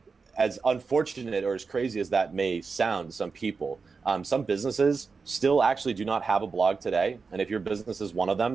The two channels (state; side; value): quieter; left; 4.8 dB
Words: unfortunate or as crazy as that may sound to some people, some businesses still actually do not have a blog today. And if your business is one of